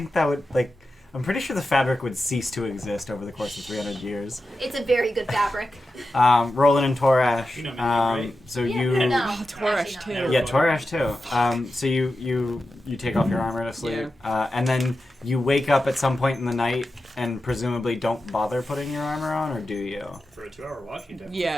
that would, like... I'm pretty sure the fabric would cease to exist over the course of 300 years. It's a very good fabric. Roland and Torash. You know me, right? So Yeah, you... no. Oh, Torash Actually too. not. Yeah, Torash too. So you take off your armor to sleep, and then you wake up at some point in the night and presumably don't bother putting your armor on, or do you? For a 2-hour watch, you definitely.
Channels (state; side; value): normal; both; correlation 0.91